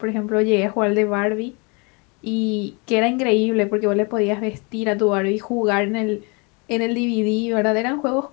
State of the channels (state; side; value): quieter; right; 31.1 dB